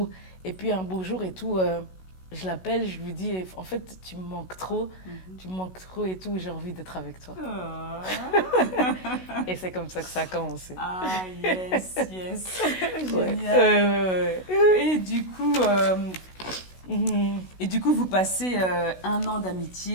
Et puis un beau jour et tout, je l'appelle, je lui dis, en fait, tu me manques trop et tout, j'ai envie d'être avec toi. Ah, Et c'est comme ça que ça a commencé. ah, yes, yes. Ouais, Génial. ouais. Et du coup, Mhm, vous passez 1 an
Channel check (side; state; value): right; late; 16 ms